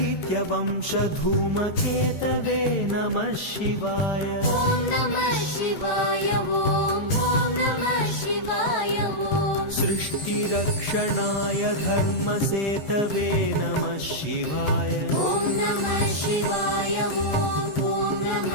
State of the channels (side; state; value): right; late; 14 ms